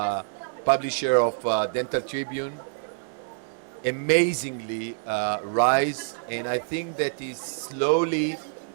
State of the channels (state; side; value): silent; left; digital silence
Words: publisher of Dental Tribune, amazingly rise, and I think that is slowly